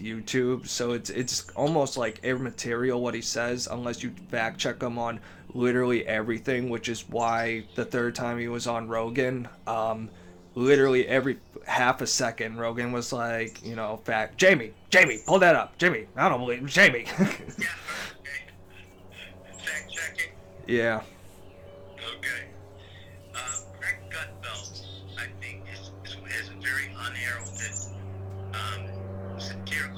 so it's almost like immaterial what he says unless you fact check him on literally everything, which is why the third time he was on Rogan, literally every half a second, Rogan was like, you know, Jamie, pull that up. Jamie, I don't believe Jamie. Yeah, okay. Fact checking? Yeah. Okay. Greg Gutfeld, I think, is a very unheralded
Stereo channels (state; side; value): identical; both; correlation 1.00